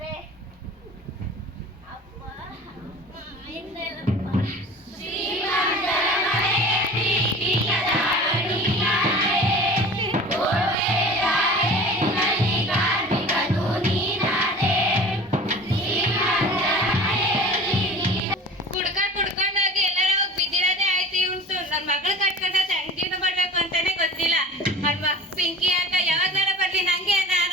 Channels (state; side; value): normal; both; correlation 0.40